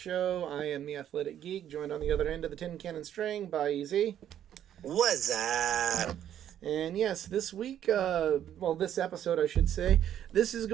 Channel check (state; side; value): quieter; left; 10.5 dB